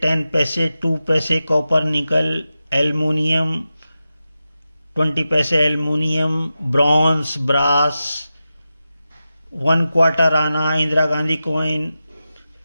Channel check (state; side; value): inverted; both; correlation -0.93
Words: 10 पैसे, 2 पैसे कॉपर निकल, एल्युमिनियम, 20 पैसे एल्युमिनियम, ब्रॉन्ज, ब्रास, 1 क्वार्टर आना, इंदिरा गांधी कॉइन।